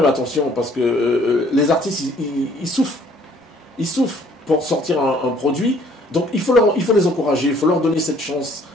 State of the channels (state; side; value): normal; both; correlation 0.60